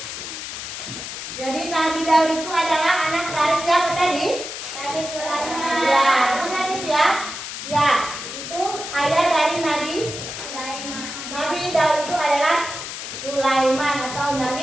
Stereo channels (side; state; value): left; noise; hiss, 8 dB below the sound